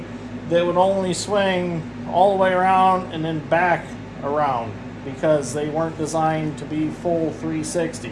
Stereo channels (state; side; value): identical; both; correlation 1.00